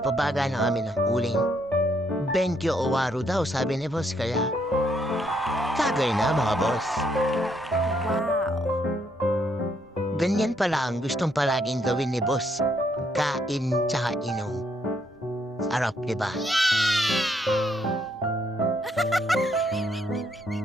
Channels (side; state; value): both; normal; correlation 0.73